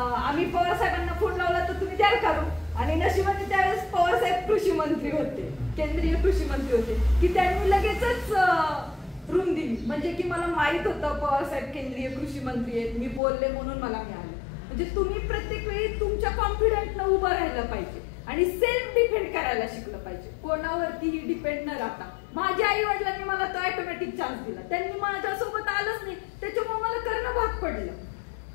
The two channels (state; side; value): drops out; right; at 13.2 s